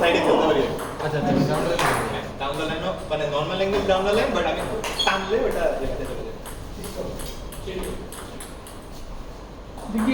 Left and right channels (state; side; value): identical; both; correlation 1.00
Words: সাইডে খেলতে পারি আচ্ছা আচ্ছা ডাউন দ্য লাইন মানে normal angle down the line but আমি টানলে ওটা লেফটে চলে যায় দিকে